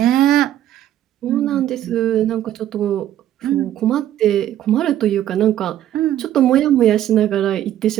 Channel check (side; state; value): left; quieter; 12.1 dB